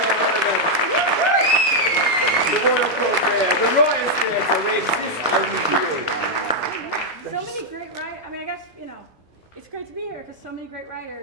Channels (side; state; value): both; normal; correlation -0.02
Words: and gentlemen. The Royal Court Theatre, the Writers' Theatre, we exist only for you. So many great writers. I mean, I guess, it's great to be here because so mmany great